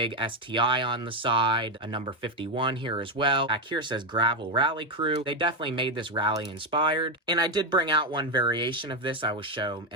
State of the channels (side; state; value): both; normal; correlation 0.07